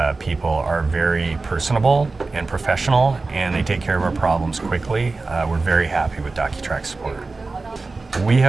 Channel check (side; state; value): left; quieter; 3.7 dB